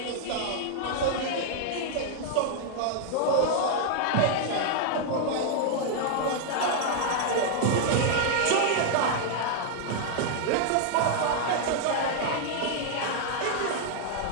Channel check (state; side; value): different; both; correlation 0.00